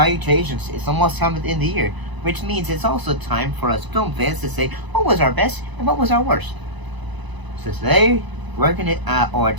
It's almost time at the end of the year, which means it's also time for us film fans to say what was our best and what was our worst. So today,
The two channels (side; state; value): left; late; 1.0 ms